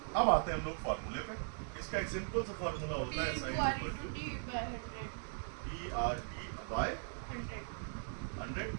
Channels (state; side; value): silent; left; digital silence